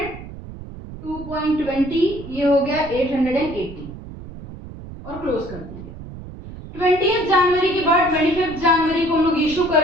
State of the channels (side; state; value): right; noise; rumble, 13 dB below the sound